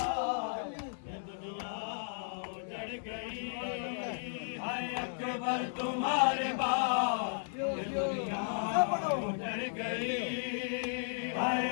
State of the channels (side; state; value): right; silent; digital silence